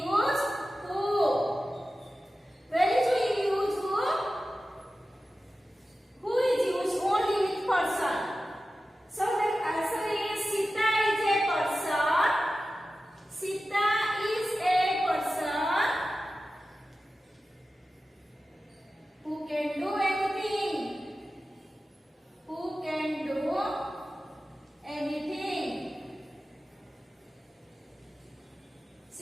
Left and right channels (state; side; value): normal; both; correlation 0.94